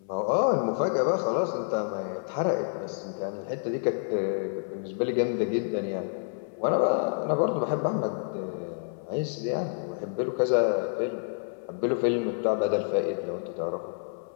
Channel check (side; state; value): right; silent; 59 dB below the other